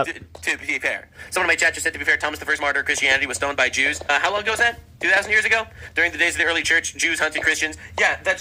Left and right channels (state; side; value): identical; both; correlation 1.00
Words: To be fair. Someone in my chat just said, to be fair, Thomas, the first martyr of Christianity, was stoned by Jews. How long ago was that? 2,000 years ago? During the days of the early church, Jews hunted Christians. Yeah,